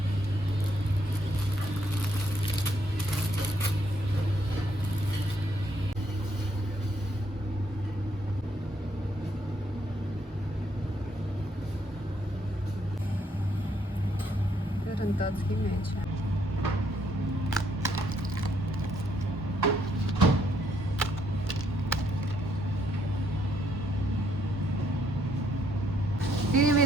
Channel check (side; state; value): both; normal; correlation 0.72